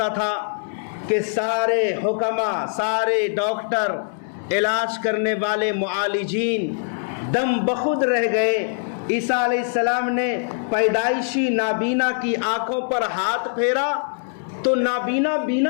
تھا کہ سارے حکما، سارے ڈاکٹر، علاج کرنے والے معالجین دم بخود رہ گئے۔ عیسیٰ علیہ السلام نے پیدائشی نابینا کی آنکھوں پر ہاتھ پھیرا تو نابینا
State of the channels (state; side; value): silent; right; 64 dB below the other